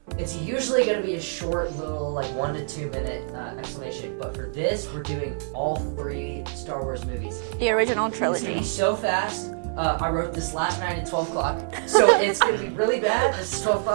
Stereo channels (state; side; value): silent; left; 61 dB below the other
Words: it's usually gonna be a short little, like 1 to 2 minute explanation. But for this, we're doing all 3 Star Wars movies in The one. original It's trilogy. gonna be so fast. I wrote this last night at 12 o'clock, so it's gonna be really bad. This is 12